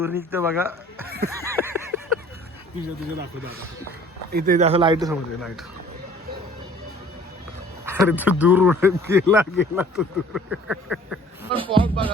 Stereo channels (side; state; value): both; normal; correlation 0.52